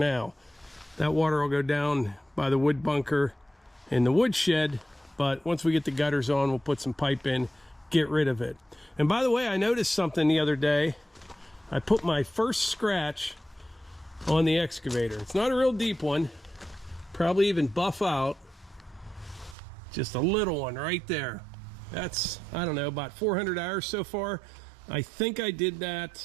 That water will go down by the wood bunker in the wood shed, but once we get the gutters on, we'll put some pipe in, get rid of it. And by the way, I noticed something the other day. I put my first scratch on the excavator. It's not a real deep one, probably even buff out. Just a little one right there. That's, I don't know, about 400 hours so far. I think I did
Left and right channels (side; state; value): left; drops out; at 19.6 s